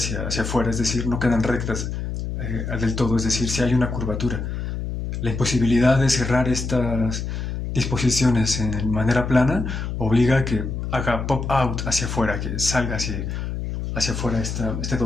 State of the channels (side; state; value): left; noise; hum, 4 dB below the sound